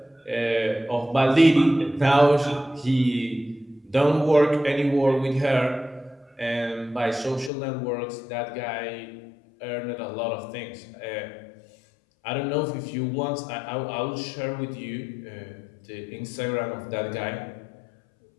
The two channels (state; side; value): drops out; right; at 7.5 s